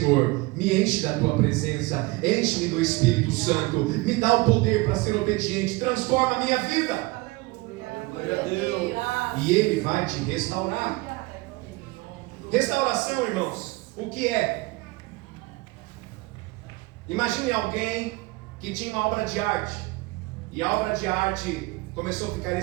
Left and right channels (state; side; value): quieter; left; 22.6 dB